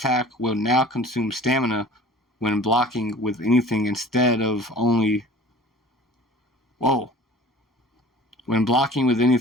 will now consume stamina when blocking with anything instead of only... Whoa. When blocking with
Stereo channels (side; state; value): both; normal; correlation 0.45